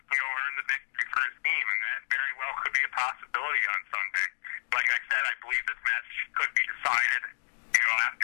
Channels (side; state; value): right; silent; digital silence